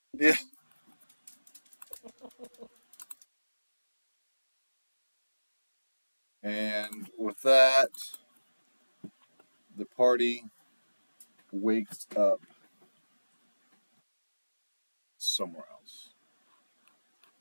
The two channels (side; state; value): both; inverted; correlation -1.00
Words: Yeah. And with that, the party wakes up somewhere else.